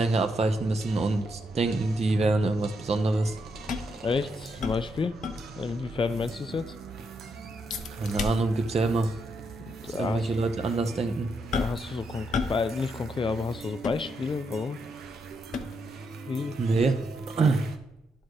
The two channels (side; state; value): both; normal; correlation 0.79